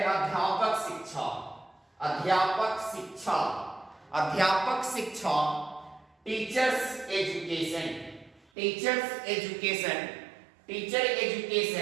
अध्यापक शिक्षा टीचर एजुकेशन।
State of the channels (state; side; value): drops out; left; at 8.5 s